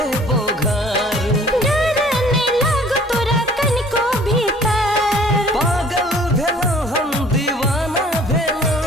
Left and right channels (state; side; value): normal; both; correlation 0.53